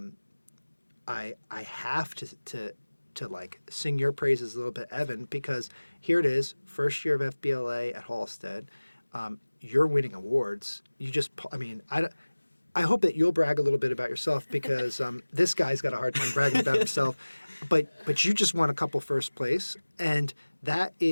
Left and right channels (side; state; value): both; inverted; correlation -1.00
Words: I have to like sing your praises a little bit, Evan, because here it is, first year of FBLA at Halstead. You're winning awards. I hope that you'll brag a little bit about yourself because this guy's got a hard time bragging about himself. But you just won a couple first place, and that